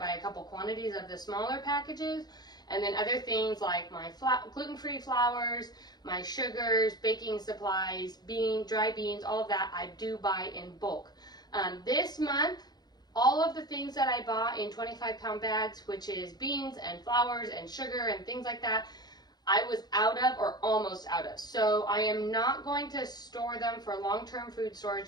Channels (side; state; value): right; late; 0.20 ms